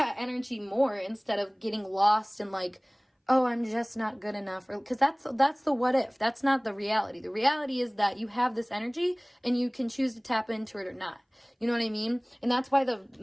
energy more, instead of getting lost in like, oh, I'm just not good enough, or because that's the what if. That's not the reality. The reality is that you have this energy and you can choose to tap into it or not. You know what I mean? And that's why the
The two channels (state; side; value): identical; both; correlation 1.00